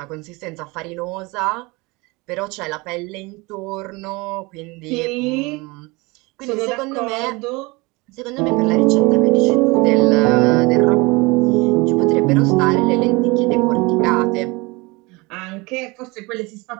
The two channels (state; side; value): quieter; left; 25.0 dB